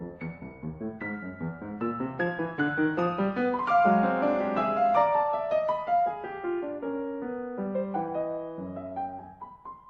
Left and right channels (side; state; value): both; identical; correlation 1.00